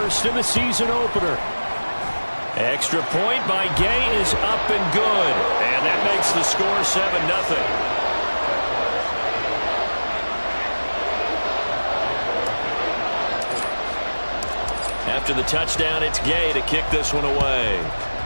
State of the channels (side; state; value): both; inverted; correlation -1.00